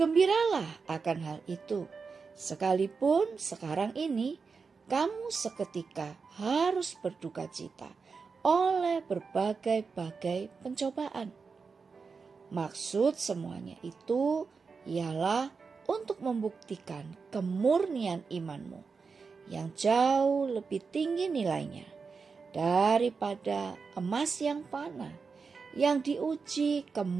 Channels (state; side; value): quieter; left; 5.0 dB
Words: akan hal itu, sekalipun sekarang ini kamu seketika harus berduka cita oleh berbagai-bagai pencobaan. Maksud semuanya itu ialah untuk membuktikan kemurnian imanmu yang jauh lebih tinggi nilainya daripada emas yang fana yang diuji